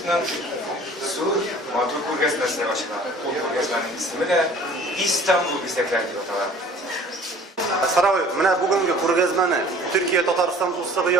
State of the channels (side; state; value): both; normal; correlation 0.49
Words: зур матур күргәзмәсенә ачыла. Ул күргәзмәнең исеме дә Истанбул бизәкләре дип атала. Сарай, менә бүгенге күргәзмәне Төркия Татарстан дуслыгы